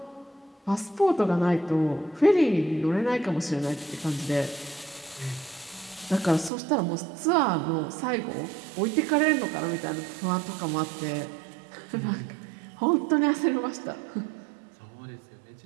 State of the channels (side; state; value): left; drops out; at 6.5 s